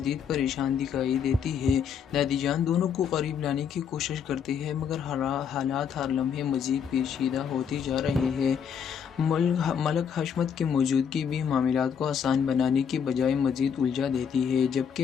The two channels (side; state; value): right; quieter; 7.3 dB